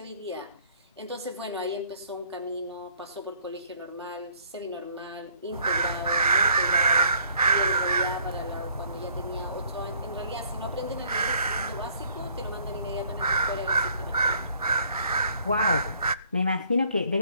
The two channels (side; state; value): both; inverted; correlation -0.61